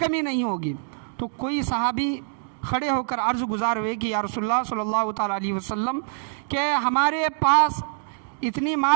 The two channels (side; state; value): left; silent; digital silence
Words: نہیں ہوگی۔ تو کوئی صحابی کھڑے ہو کر عرض گزار ہوئے کہ یا رسول اللہ صلی اللہ تعالیٰ علیہ وسلم کہ ہمارے پاس اتنی